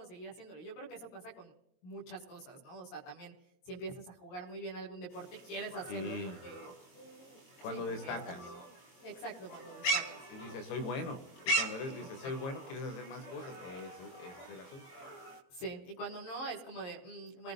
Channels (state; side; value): late; right; 22 ms